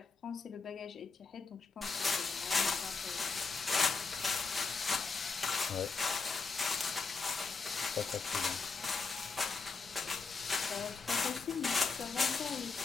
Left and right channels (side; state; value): right; quieter; 4.5 dB